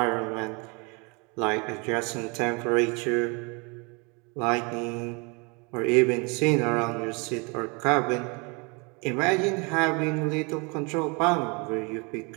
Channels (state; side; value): quieter; left; 30.7 dB